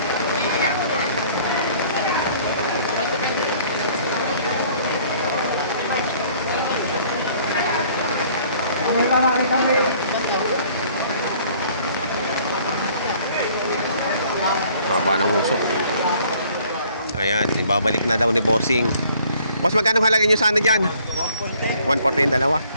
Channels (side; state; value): both; inverted; correlation -0.57